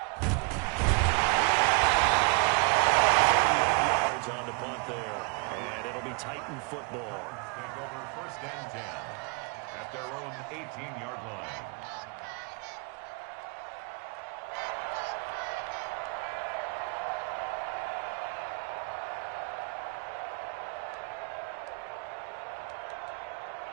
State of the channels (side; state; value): left; quieter; 30.9 dB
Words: On the punt there, and it'll be Titan football. Take over 1st and 10 at their own 18-yard line.